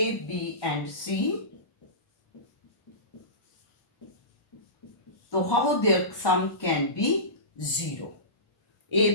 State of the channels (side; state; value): right; late; 1.2 ms